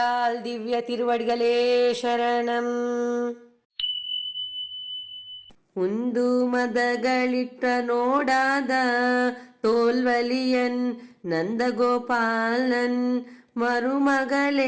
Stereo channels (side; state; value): both; identical; correlation 1.00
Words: திவ்ய திருவடிகளே சரணம். உந்து மதகளிட்ட நோடாத தோல்வலியன் நந்தகோபாலன்